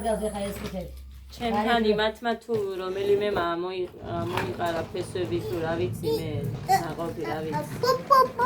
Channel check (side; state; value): both; identical; correlation 1.00